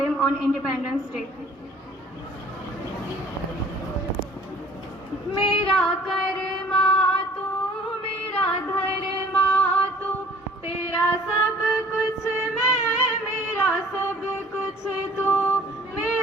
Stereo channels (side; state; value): both; normal; correlation 0.53